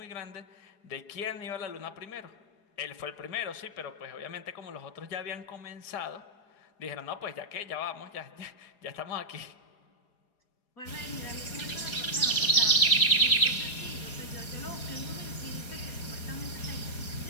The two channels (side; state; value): right; late; 4.8 ms